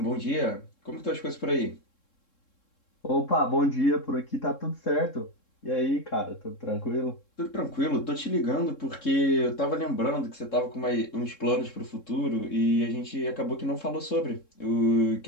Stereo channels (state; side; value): late; right; 3.7 ms